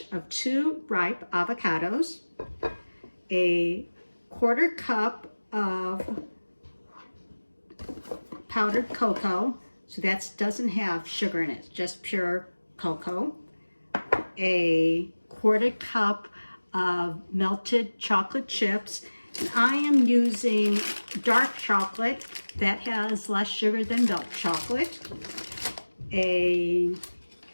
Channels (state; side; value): inverted; both; correlation -1.00